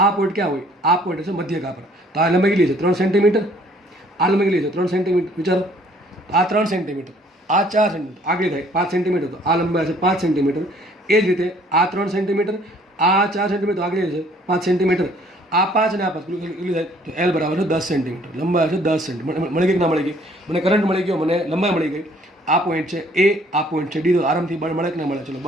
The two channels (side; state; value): both; normal; correlation 0.59